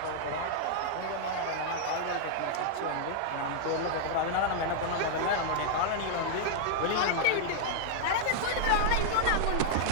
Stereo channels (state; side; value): different; both; correlation -0.01